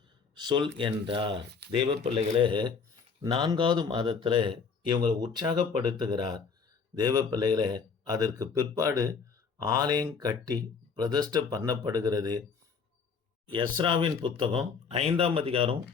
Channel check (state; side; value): quieter; right; 5.5 dB